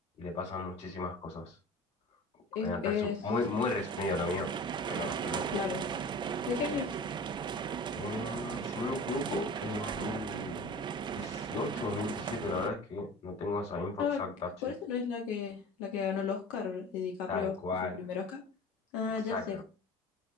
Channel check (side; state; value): both; normal; correlation 0.38